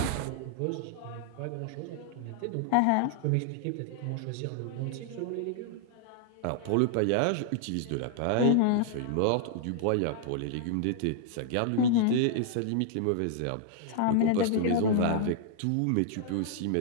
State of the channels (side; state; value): both; different; correlation -0.01